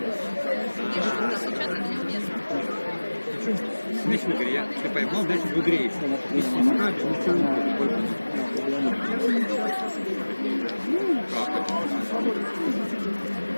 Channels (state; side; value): inverted; both; correlation -1.00